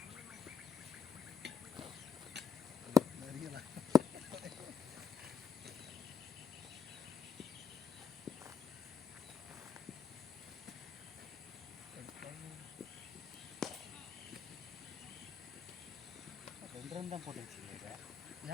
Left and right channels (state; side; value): quieter; right; 6.6 dB